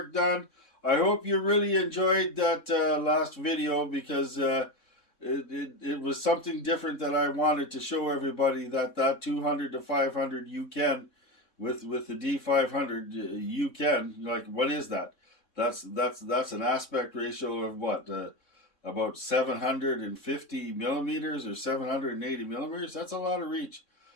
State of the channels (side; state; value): right; late; 3.6 ms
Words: done. I hope you really enjoyed that last video, because it was something different that I wanted to show everybody, that 200 to 500 you can with the D500 you can. Like, what is that? That's an aspect ratio of what? About 750 millimeters or 780 millimeters. That's a lot of reach.